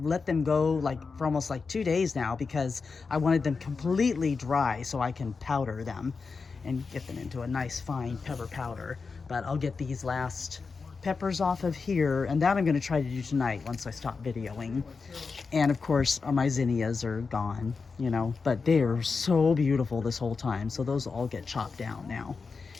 let them go like for almost like 2 days now, because I wanted them completely dry so I can powder them and get them into a nice fine pepper powder. But I'll get these last peppers off of here, and that I'm going to try to do tonight once I stop videoing. And of course my zinnias are gone, you know, but they are so beautiful this whole time, so those will all get chopped down now.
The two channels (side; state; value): right; quieter; 4.8 dB